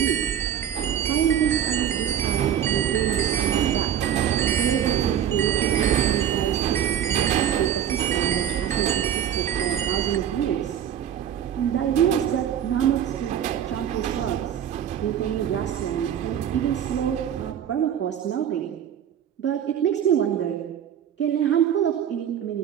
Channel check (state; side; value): quieter; left; 9.6 dB